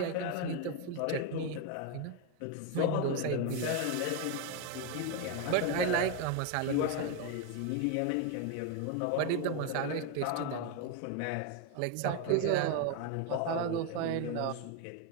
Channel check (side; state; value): both; different; correlation 0.02